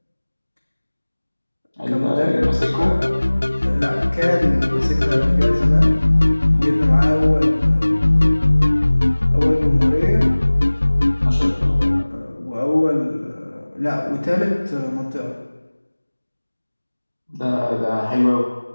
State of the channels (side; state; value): both; inverted; correlation -1.00